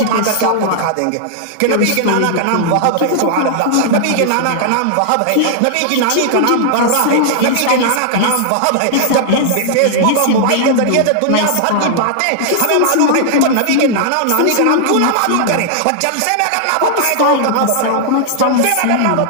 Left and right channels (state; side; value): different; both; correlation -0.01